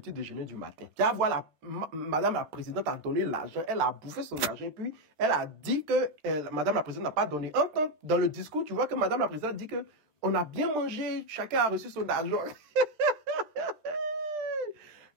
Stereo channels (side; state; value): left; late; 13 ms